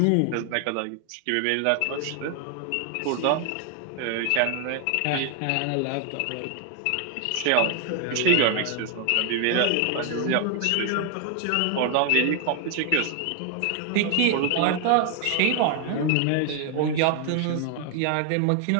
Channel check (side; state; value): both; different; correlation 0.01